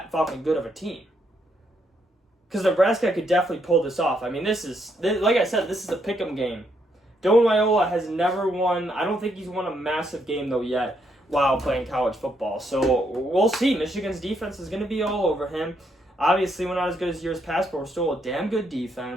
fucking good of a team. Because Nebraska could definitely pull this off. I mean, like I said, this is a pick'em game. Dylan Raiola has never won. I don't think he's won a massive game, though, yet while playing college football. So we'll see. Michigan's defense is going to be all over him. Obviously, we're not as good as years past, but we're still a damn good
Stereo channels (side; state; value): both; normal; correlation 0.75